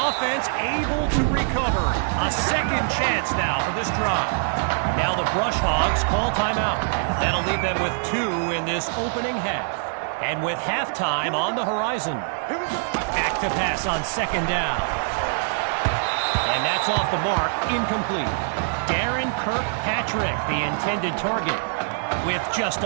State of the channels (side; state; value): left; silent; 63 dB below the other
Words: able to recover. A second chance now for this drive. Now the Brush Hogs call timeout. That'll leave them with 2 in this opening half. And with halftime on the horizon. Back to pass on second down. And that's off the mark, incomplete. Darren Kirkpatrick, the intended target. With just